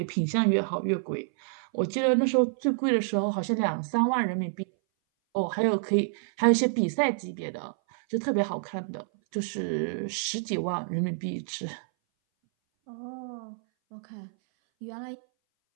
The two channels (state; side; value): silent; left; 58 dB below the other